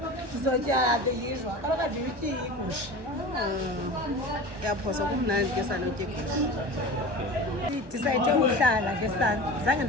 Sizotya the usual. Kaloku andiyityi igusha. Yaphosa kumnandi ke sanotya igusha. Ndisayithe uhlala ke sana. Zange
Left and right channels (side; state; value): left; late; 1.1 ms